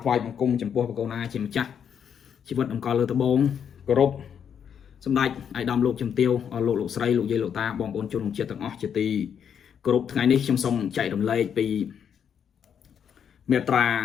ថ្វាយបង្គំចំពោះបកូណាជាម្ចាស់ជីវិតអង្គលើត្បូងគោរពសម្ដេចអាយដាមលោកជំទាវលោកស្រីលោកយាយលោកតាបងប្អូនជនជាតិទាំងអស់ជាទីគោរពថ្ងៃនេះខ្ញុំសូមចែករំលែកពីមេត្រា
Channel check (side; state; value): right; quieter; 8.0 dB